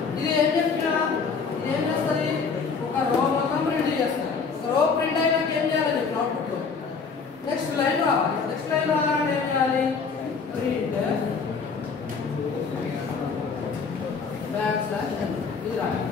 ఇది ఏం చెప్పినా ఇది ఏం చేస్తుంది? ఒక రో మొత్తం ప్రింట్ చేస్తారు. రో ప్రింట్ అయినాక ఏం చేయాలి చెప్పి అవుట్పుట్లో నెక్స్ట్ లైన్ రావాలి. నెక్స్ట్ లైన్ రావాలంటే ఏం చేయాలి? ప్రింట్ బ్యాక్ స్లాష్ ఇది రాయాలి.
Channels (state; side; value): quieter; right; 5.3 dB